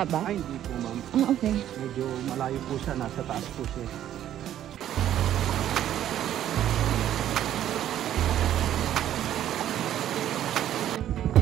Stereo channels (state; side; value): quieter; left; 11.5 dB